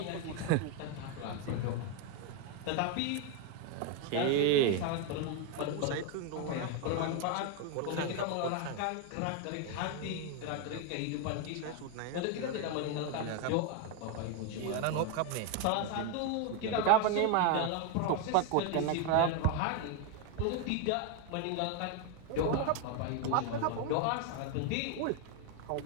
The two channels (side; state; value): both; different; correlation 0.01